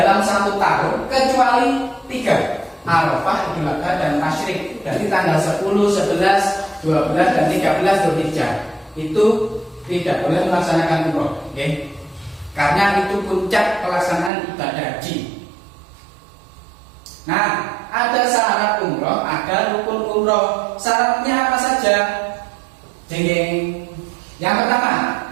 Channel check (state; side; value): drops out; left; at 14.3 s